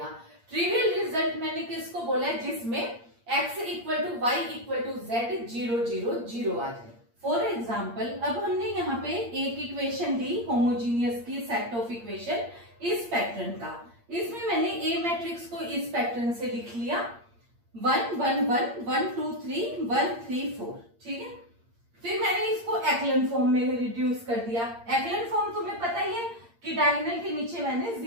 ट्रिवियल रिजल्ट मैंने किसको बोला है, जिसमें x equal to y equal to z 0 0 0 आ जाए. फॉर एग्जाम्पल अब हमने यहाँ पे एक इक्वेशन ली होमोजीनियस की, सेट ऑफ इक्वेशन इस पैटर्न का. इसमें मैंने ए मैट्रिक्स को इस पैटर्न से लिख लिया 1 1 1 1 2 3 1 3 4. ठीक है. फिर मैंने इसको एक्लन फॉर्म में रिड्यूस कर दिया. एक्लन फॉर्म तुम्हें पता ही है कि डायगोनल के नीचे मैंने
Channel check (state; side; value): late; left; 8.6 ms